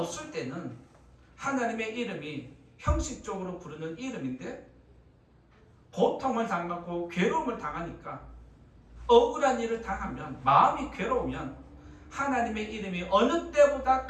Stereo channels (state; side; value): identical; both; correlation 1.00